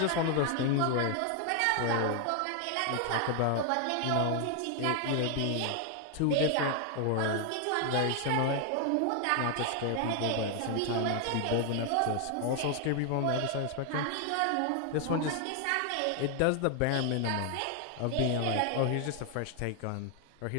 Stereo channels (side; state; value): both; different; correlation 0.00